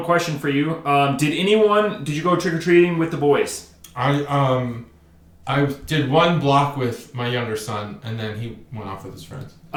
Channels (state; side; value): identical; both; correlation 1.00